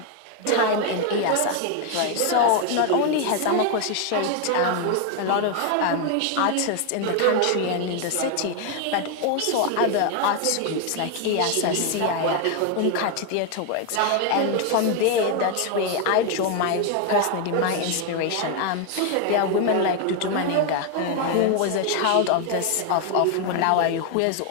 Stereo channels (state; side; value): different; both; correlation 0.01